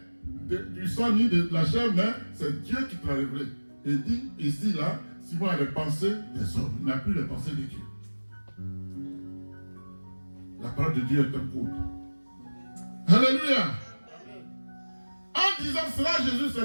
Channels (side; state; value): both; inverted; correlation -1.00